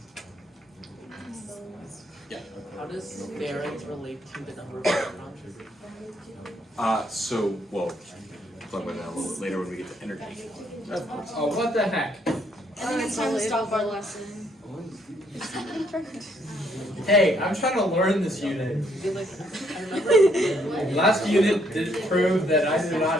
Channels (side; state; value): both; normal; correlation 0.70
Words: Yeah. How does variance relate to the number of electrons? Well, talk about that a little bit later when we get to energy. Oh, what the heck? I think it's time to stop our lesson. Hey, I'm trying to learn this unit. Like, I remember. Last unit did prove that I do